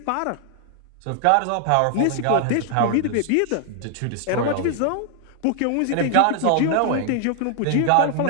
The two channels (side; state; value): both; different; correlation 0.00